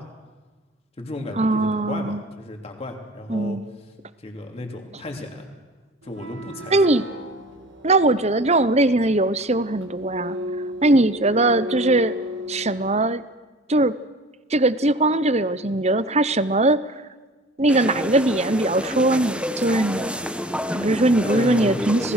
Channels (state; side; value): normal; both; correlation 0.43